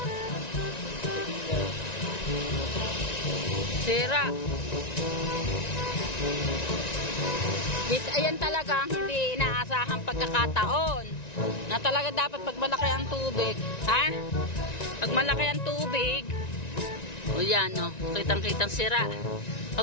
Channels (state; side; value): late; right; 1.9 ms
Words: Sira. Ayan talaga ang hindi inaasahang pagkakataon. Na talaga dapat pag malaki ang tubig. Ha? Pag malaki ang tubig. O yan, no. Kitang-kitang sira.